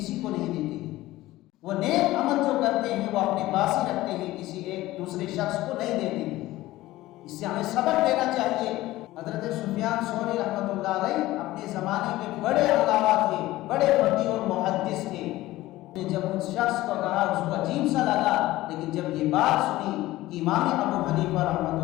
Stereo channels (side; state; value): right; quieter; 17.0 dB